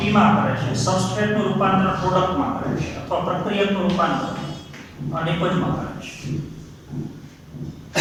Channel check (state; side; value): identical; both; correlation 1.00